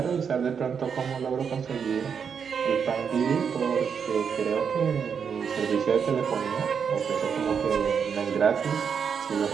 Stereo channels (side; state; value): left; quieter; 6.8 dB